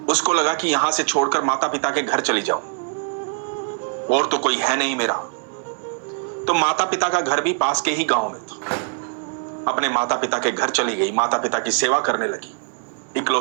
उसको लगा कि यहां से छोड़कर माता पिता के घर चली जाऊं और तो कोई है नहीं मेरा। तो माता पिता का घर भी पास के ही गांव में था। अपने माता पिता के घर चली गई, माता पिता की सेवा करने लगी।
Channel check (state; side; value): silent; left; 63 dB below the other